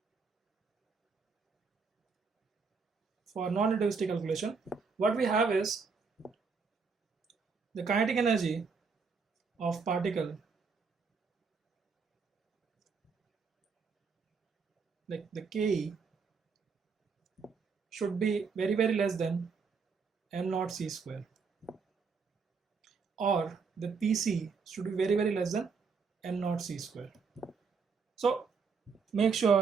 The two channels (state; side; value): quieter; left; 5.3 dB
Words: what we have is the kinetic energy of particle, like the Ke, should be very, very less than m naught c square, or the PC should be very, very less than m naught c square. So make